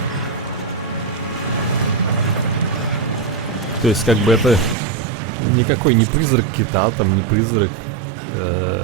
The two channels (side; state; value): left; drops out; at 4.8 s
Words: То есть, как бы, это... Никакой не призрак кита, там, не призрак